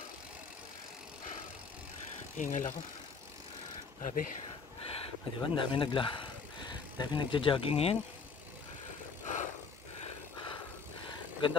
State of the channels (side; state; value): right; quieter; 5.1 dB